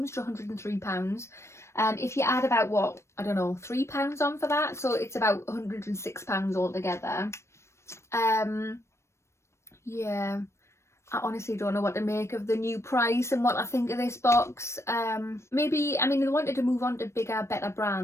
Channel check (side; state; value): right; late; 0.13 ms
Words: to £103. If you add about, what, I don't know, £3 on for that, so it's about £106 altogether. Yeah, I honestly don't know what to make of the new price and what I think of this box. Maybe, I mean, they wanted to move on to bigger, better